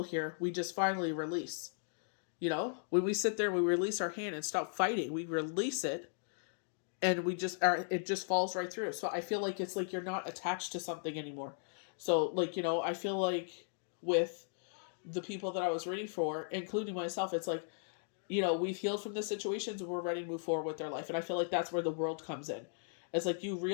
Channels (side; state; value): right; silent; digital silence